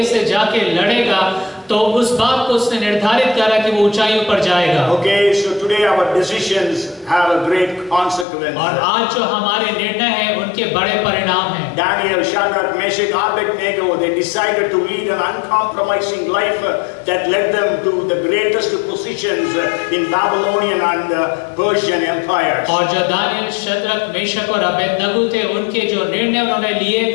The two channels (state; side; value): drops out; right; at 8.2 s